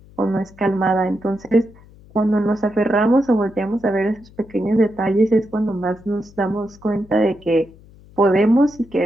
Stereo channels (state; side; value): noise; left; hum, 24 dB below the sound